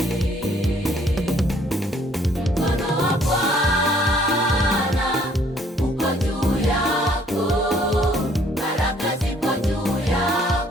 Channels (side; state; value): both; normal; correlation 0.62